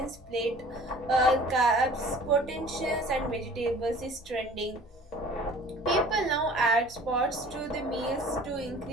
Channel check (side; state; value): both; normal; correlation 0.48